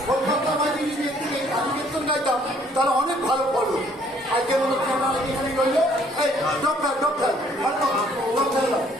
কলকাতা বাজি যদি একটু কাজু কীর্তন গাইতাম তাহলে অনেক ভালো ফলো। আজকে মনে হচ্ছে আমরা এখানে রইল। এই ডক্টর ডক্টর ডক্টর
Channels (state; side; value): normal; both; correlation 0.62